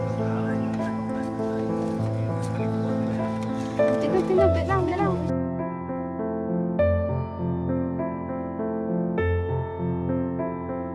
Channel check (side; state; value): both; identical; correlation 1.00